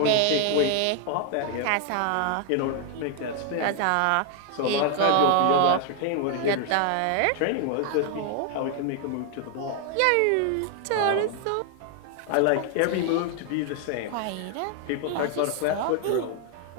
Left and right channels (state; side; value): different; both; correlation 0.00